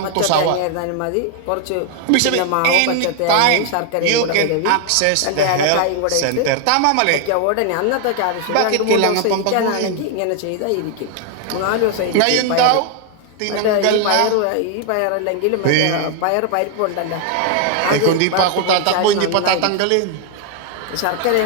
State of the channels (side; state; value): both; different; correlation 0.00